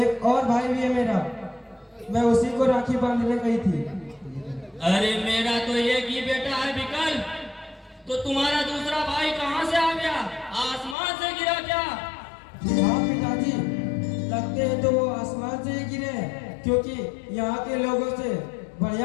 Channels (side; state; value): right; drops out; at 11.0 s